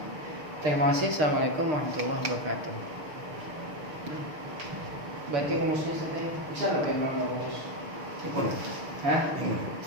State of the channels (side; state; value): left; late; 6.6 ms